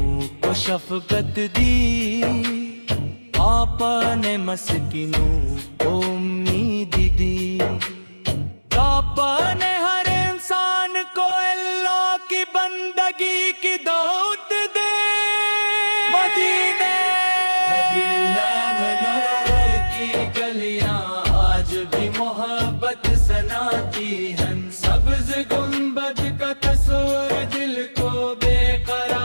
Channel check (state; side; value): inverted; both; correlation -1.00